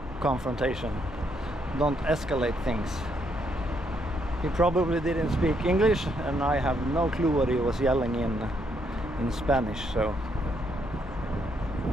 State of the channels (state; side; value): normal; both; correlation 0.74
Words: confrontation. Don't escalate things. He probably didn't speak English, and I have no clue what he was yelling in Spanish, so...